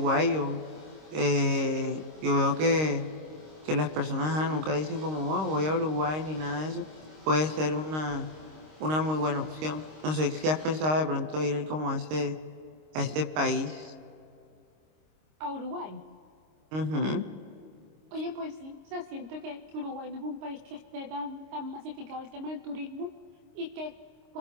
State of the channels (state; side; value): late; left; 26 ms